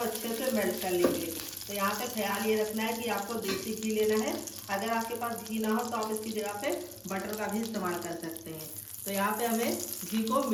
से मेल्ट कर लेंगे। तो यहाँ पे ख्याल ये रखना है कि आपको देसी घी लेना है। अगर आपके पास घी ना हो तो आप इसकी जगह पे बटर का भी इस्तेमाल कर सकते हैं। तो यहाँ पे हमें घी को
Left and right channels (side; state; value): both; identical; correlation 1.00